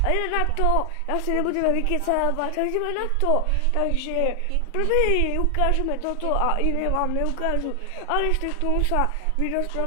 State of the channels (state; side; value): different; both; correlation 0.00